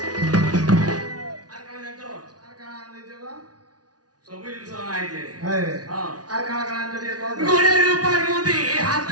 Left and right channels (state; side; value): late; left; 0.69 ms